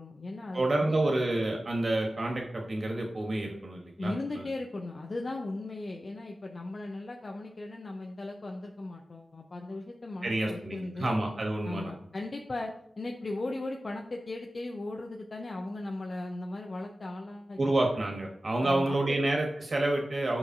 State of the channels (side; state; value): both; normal; correlation 0.94